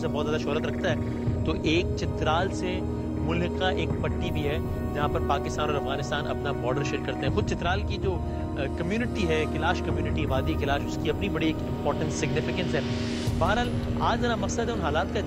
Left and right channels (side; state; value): both; identical; correlation 1.00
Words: बहुत ज़्यादा शोहरत रखता है, तो एक चित्राल से मुल्का एक पट्टी भी है जहाँ पर पाकिस्तान और अफगानिस्तान अपना बॉर्डर शेयर करते हैं। खुद चित्राल की जो कम्युनिटी है, किलाश कम्युनिटी, वादी किलाश, उसकी अपनी बड़ी एक इंपॉर्टेंस, सिग्निफिकेंस है। बहरहाल आज मेरा मकसद है उन हालात का